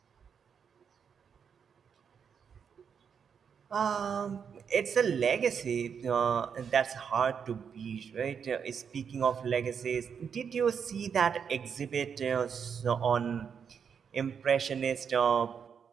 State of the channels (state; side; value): quieter; left; 7.0 dB